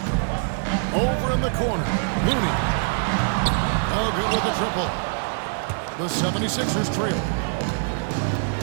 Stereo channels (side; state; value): left; silent; digital silence